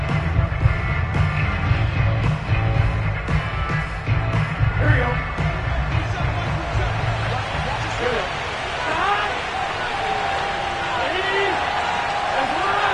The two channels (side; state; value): both; identical; correlation 1.00